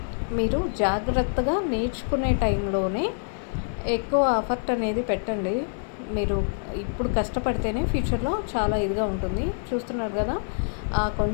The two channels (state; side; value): silent; right; digital silence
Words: మీరు జాగ్రత్తగా నేర్చుకునే టైంలోనే ఎక్కువ ఎఫర్ట్ అనేది పెట్టండి. మీరు ఇప్పుడు కష్టపడితేనే ఫ్యూచర్లో చాలా ఇదిగా ఉంటుంది. చూస్తున్నారు కదా,